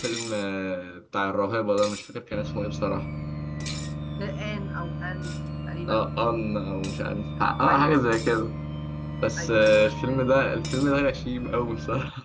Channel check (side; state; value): both; identical; correlation 1.00